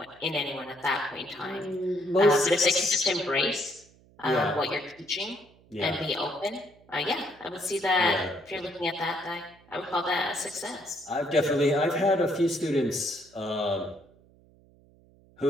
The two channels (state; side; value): noise; right; hum, 28 dB below the sound